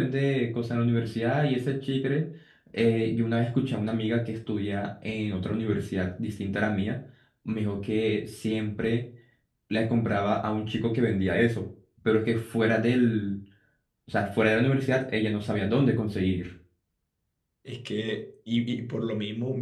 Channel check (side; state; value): both; identical; correlation 1.00